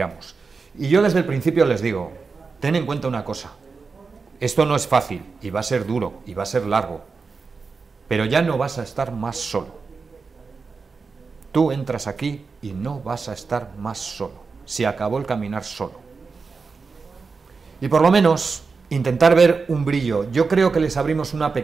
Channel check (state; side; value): quieter; left; 4.7 dB